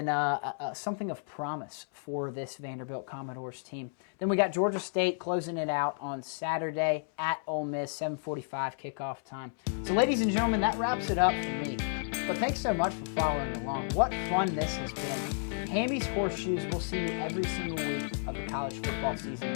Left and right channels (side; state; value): right; silent; 57 dB below the other